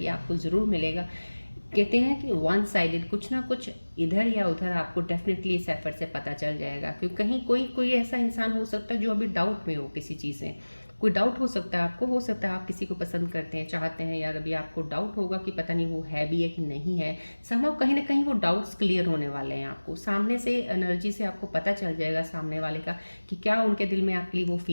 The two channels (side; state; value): both; inverted; correlation -1.00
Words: आपको ज़रूर मिलेगा। कहते हैं कि वन साइडेड, कुछ ना कुछ इधर या उधर आपको डेफिनेटली इस एफर्ट से पता चल जाएगा। क्योंकि कहीं कोई कोई ऐसा इंसान हो सकता है जो अभी डाउट में हो किसी चीज़ में, कोई डाउट हो सकता है आपको, हो सकता है आप किसी को पसंद करते हैं, चाहते हैं यार, अभी आपको डाउट होगा कि पता नहीं वो है भी है कि नहीं है। समहाउ कहीं ना कहीं वो डाउट्स क्लियर होने वाले हैं। आपको सामने से एनर्जी से आपको पता चल जाएगा सामने वाले का कि क्या उनके दिल में आपके लिए वो